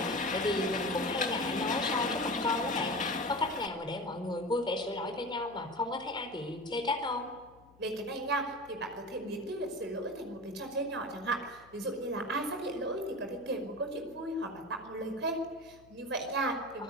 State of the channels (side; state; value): left; noise; hum, 26 dB below the sound